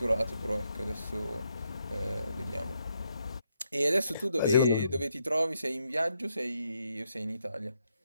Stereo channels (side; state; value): both; inverted; correlation -0.79